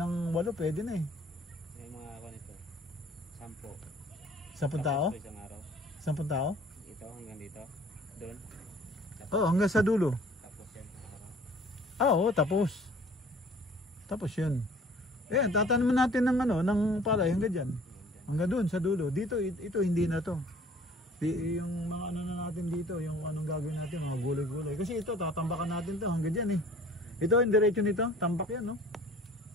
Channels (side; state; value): both; normal; correlation 0.51